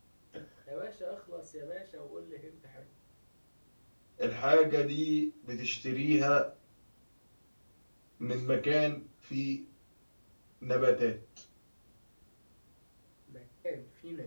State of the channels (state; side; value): inverted; both; correlation -1.00